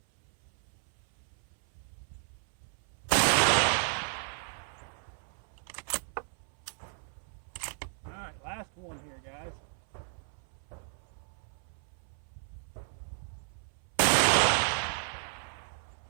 all right, last one here, guys.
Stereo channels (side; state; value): left; silent; 55 dB below the other